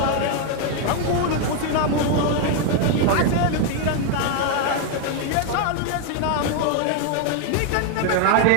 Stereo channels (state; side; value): different; both; correlation 0.01